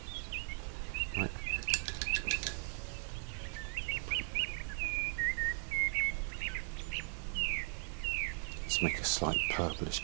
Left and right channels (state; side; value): silent; left; 52 dB below the other